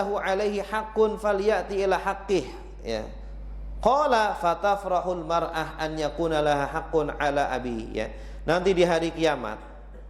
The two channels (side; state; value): both; identical; correlation 1.00